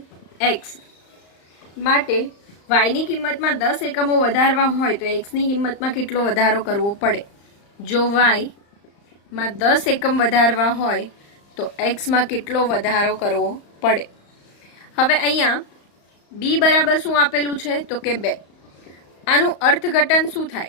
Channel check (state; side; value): late; right; 35 ms